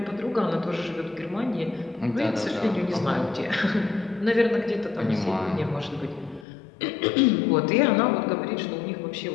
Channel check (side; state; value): right; drops out; at 6.5 s